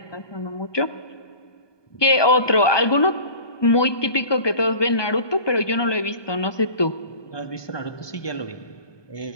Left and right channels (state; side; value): late; right; 1.2 ms